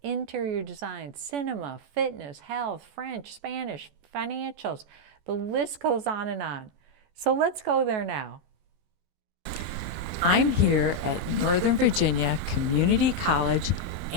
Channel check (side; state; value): left; late; 14 ms